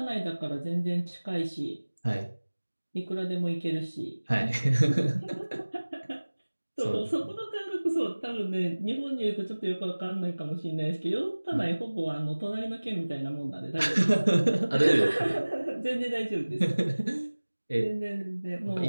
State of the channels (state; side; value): inverted; both; correlation -1.00